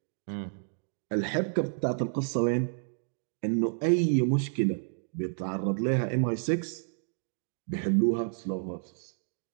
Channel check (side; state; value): left; silent; digital silence